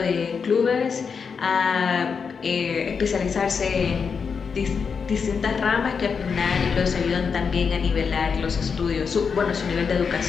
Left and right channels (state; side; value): quieter; right; 5.9 dB